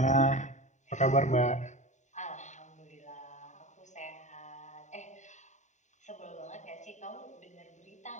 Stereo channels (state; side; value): late; right; 0.34 ms